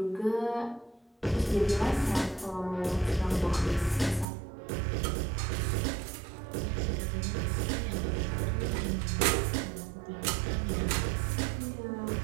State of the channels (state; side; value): drops out; left; at 4.2 s